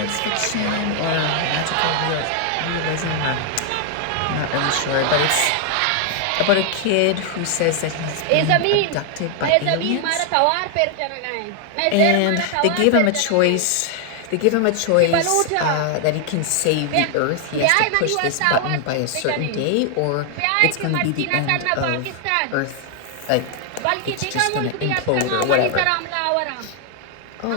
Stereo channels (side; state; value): both; different; correlation 0.00